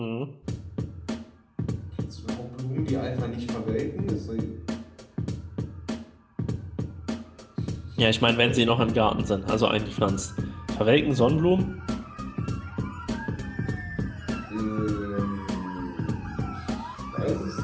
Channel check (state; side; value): identical; both; correlation 1.00